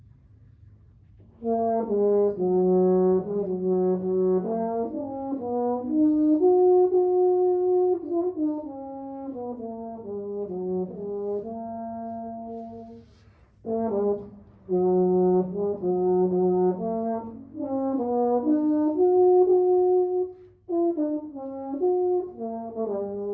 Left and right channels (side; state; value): both; identical; correlation 1.00